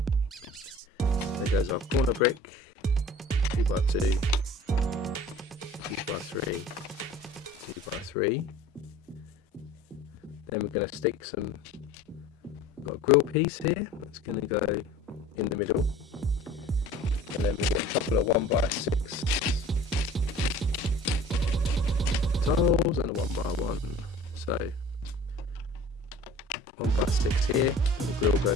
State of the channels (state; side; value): normal; both; correlation 0.45